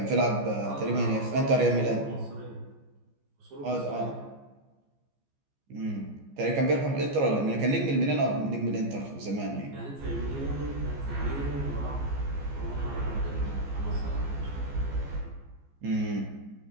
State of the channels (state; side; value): late; left; 15 ms